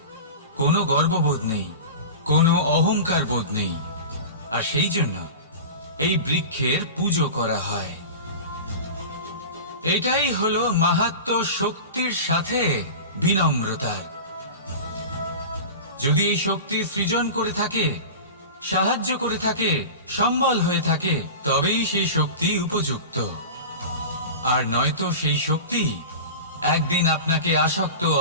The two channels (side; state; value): both; inverted; correlation -0.31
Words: কোনো গর্ববোধ নেই, কোনো অহংকার বোধ নেই, আর সেই জন্য এই বৃক্ষের পুজো করা হয়। এটাই হলো মাহাত্ম্য শক্তির সাথে বিনম্রতার। যদি এই শক্তি সৃজন করে থাকে, সাহায্য করে থাকে, সম্বল হয়ে থাকে, তবেই সেই শক্তি উপযুক্ত। আর নয়তো সেই শক্তি একদিন আপনাকে আসক্ত